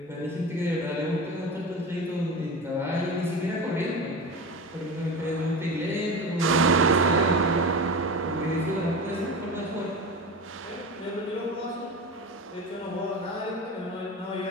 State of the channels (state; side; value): normal; both; correlation 0.27